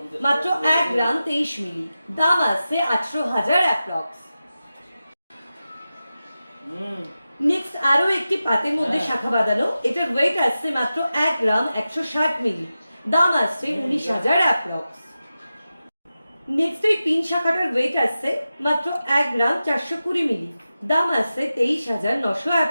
মাত্র 1 গ্রাম 23 মিলি, দাম আসছে 18,000 অ্যাপ্রক্স। নেক্সট আরো একটি পাতের মধ্যে শাখা বাঁধানো, এটার ওয়েট আসছে মাত্র 1 গ্রাম 160 মিলি, দাম আসছে 19,000 অ্যাপ্রক্স। নেক্সট এই পিন শাখাটার ওয়েট আসছে মাত্র 1 গ্রাম 420 মিলি, দাম আসছে 23,900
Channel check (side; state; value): both; inverted; correlation -0.93